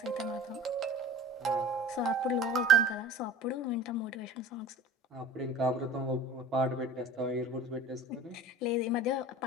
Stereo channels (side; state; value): both; normal; correlation 0.41